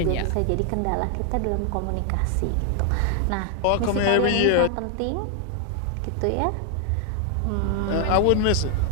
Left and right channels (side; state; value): both; different; correlation 0.00